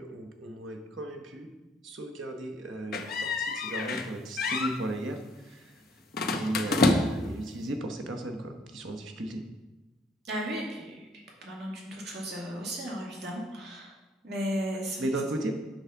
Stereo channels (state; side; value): normal; both; correlation 0.65